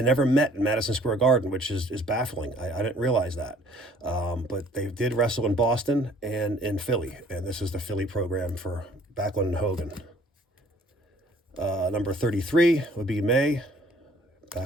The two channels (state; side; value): normal; both; correlation 0.57